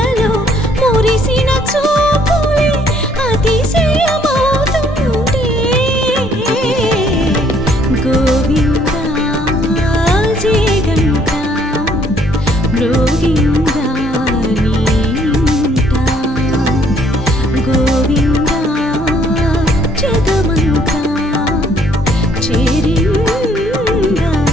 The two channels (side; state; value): both; normal; correlation 0.65